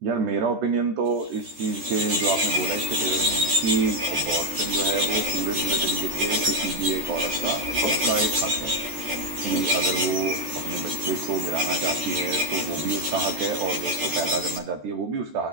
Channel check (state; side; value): late; left; 14 ms